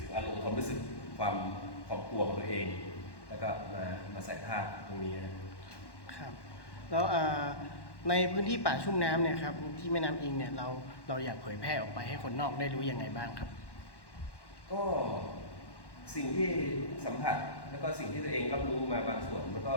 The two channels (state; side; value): late; right; 1.1 ms